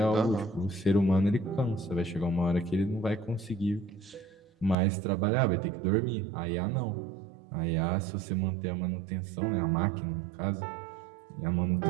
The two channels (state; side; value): drops out; left; at 4.8 s